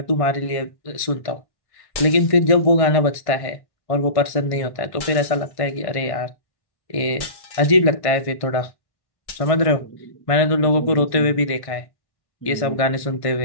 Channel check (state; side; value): late; right; 1.5 ms